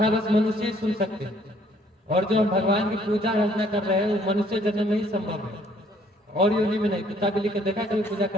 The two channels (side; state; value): both; normal; correlation 0.63